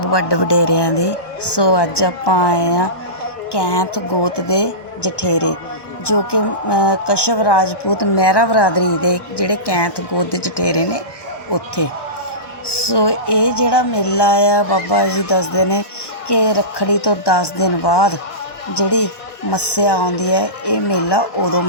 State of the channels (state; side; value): late; right; 1.1 ms